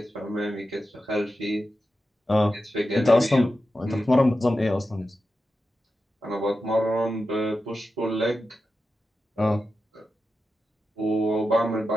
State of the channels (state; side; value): normal; both; correlation 0.91